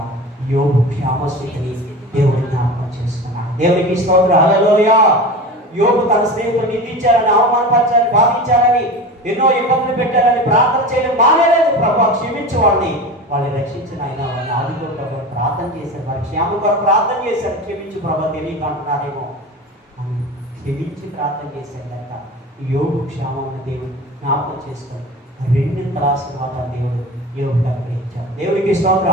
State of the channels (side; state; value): both; normal; correlation 0.31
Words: యోబు క్షేమస్థితిని దేవుడు జ్ఞాపకం చేసుకున్నాడు. దేవునికి స్తోత్రం, హల్లెలూయా. యోబు తన స్నేహితులు నిందించారని, అవమానపరిచారని, బాధించారని, ఎన్నో ఇబ్బందులు పెట్టారని ప్రార్థన చేయడం మానేలేదు. ప్రభు క్షమించు వాళ్ళని రక్షించిన ఆయన వాళ్ళని ఆదిలో ప్రభు ప్రార్థన చేశారు. వారి క్షేమం కొరకు ప్రార్థన చేశారు. క్షమించు ప్రభు తెలియక అంటున్నారేమో అని క్షమించి ప్రార్థన చేశారు. కనుక యోబు క్షేమం దేవుడు జ్ఞాపకం చేసుకొని రెండింతల ఆశీర్వాదాలు దేవుడు యోబుకు అనుగ్రహించారు. దేవునికి స్తోత్రం,